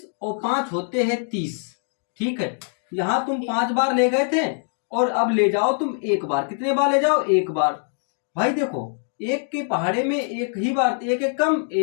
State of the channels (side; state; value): right; silent; 55 dB below the other